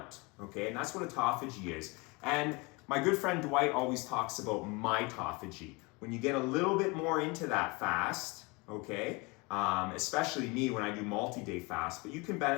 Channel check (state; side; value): quieter; right; 27.0 dB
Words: okay? And that's what autophagy is. And my good friend Dwight always talks about mitophagy. When you get a little bit more into that fast, okay? Especially me when I do multi-day fast, but you can